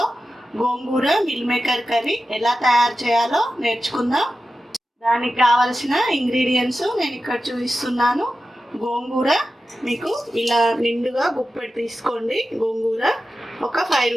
గోంగూర మిల్ మేకర్ కర్రీ ఎలా తయారు చేయాలో నేర్చుకుందాం. దానికి కావలసిన ఇంగ్రీడియంట్స్ నేను ఇక్కడ చూపిస్తున్నాను. గోంగూర మీకు ఇలా నిండుగా గుప్పెడు తీసుకోండి. గోంగూర ఒక 5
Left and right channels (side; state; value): both; normal; correlation 0.92